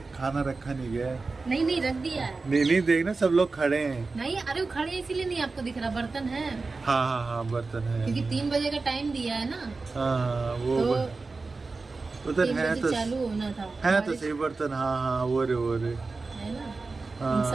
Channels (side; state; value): left; quieter; 3.9 dB